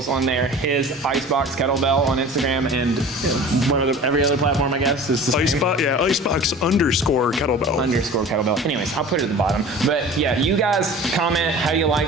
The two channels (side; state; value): both; normal; correlation 0.40